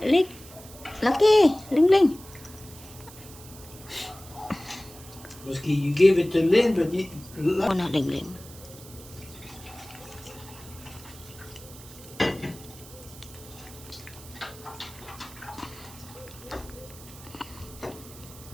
Lucky, Lengleng. Musky, you gave it to Lynn, but you... Oh, na, Lengleng.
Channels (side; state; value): right; noise; hiss, 18 dB below the sound